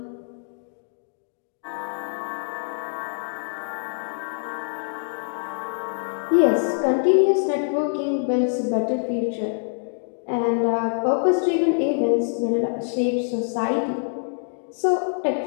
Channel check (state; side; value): silent; right; 62 dB below the other